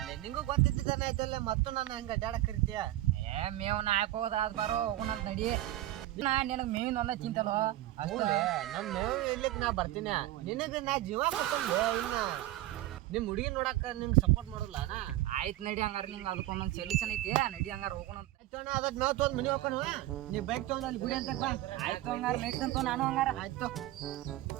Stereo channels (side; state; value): left; quieter; 15.5 dB